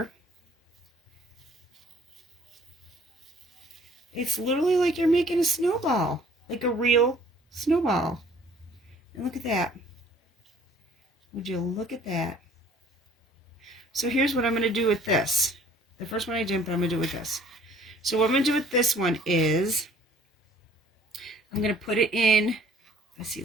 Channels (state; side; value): normal; both; correlation 0.56